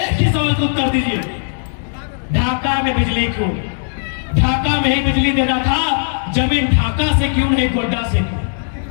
ही सवाल का उत्तर दीजिए, ढाका में बिजली क्यों? ढाका में ही बिजली देना था, जमीन ढाका से क्यों नहीं गोड्डा से क्यों?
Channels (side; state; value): right; silent; digital silence